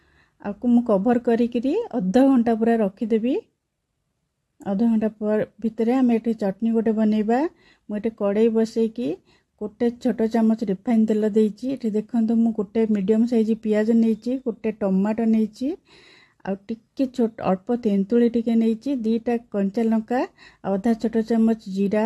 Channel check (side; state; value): both; identical; correlation 1.00